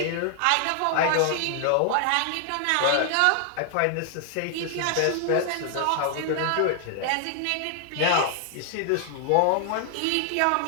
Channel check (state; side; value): different; both; correlation 0.00